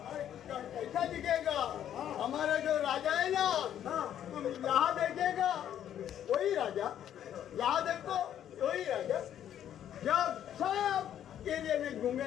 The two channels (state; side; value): quieter; right; 10.4 dB